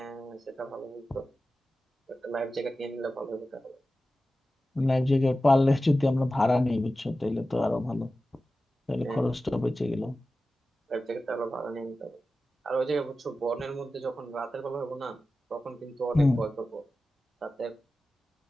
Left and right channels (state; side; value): normal; both; correlation 0.94